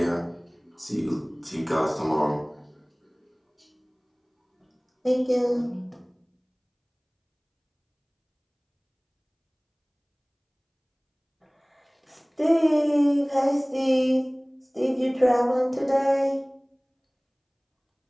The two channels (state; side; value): identical; both; correlation 1.00